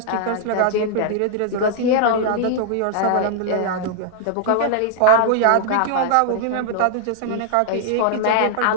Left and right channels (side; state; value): both; different; correlation -0.01